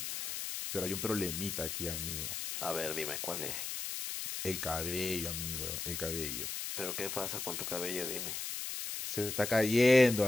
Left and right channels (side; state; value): left; noise; hiss, 4 dB below the sound